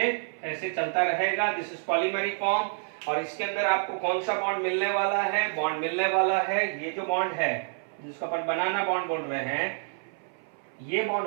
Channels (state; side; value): silent; left; 56 dB below the other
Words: ऐसे चलता रहेगा, दिस इज पॉलीमेरिक फॉर्म। और इसके अंदर आपको कौन सा बॉन्ड मिलने वाला है, बॉन्ड मिलने वाला है, ये जो बॉन्ड है जिसको अपन बनाना बॉन्ड बोल रहे हैं, ये